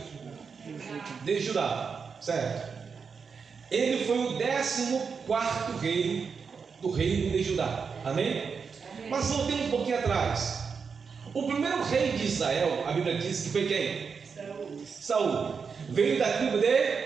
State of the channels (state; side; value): quieter; left; 5.7 dB